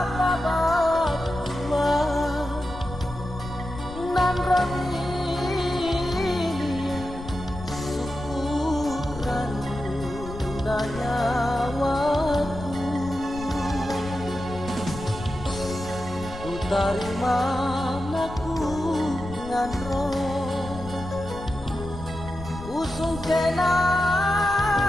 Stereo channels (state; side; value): noise; left; rumble, 12 dB below the sound